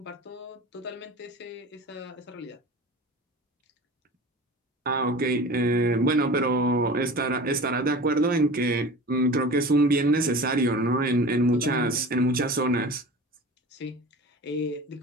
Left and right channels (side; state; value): both; normal; correlation 0.36